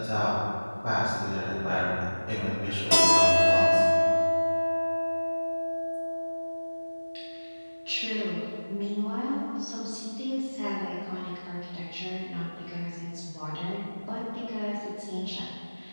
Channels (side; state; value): both; inverted; correlation -1.00